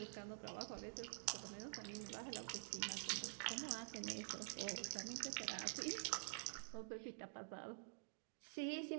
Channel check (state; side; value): silent; left; digital silence